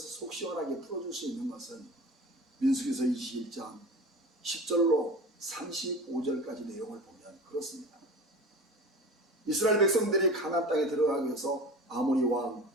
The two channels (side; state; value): both; normal; correlation 0.35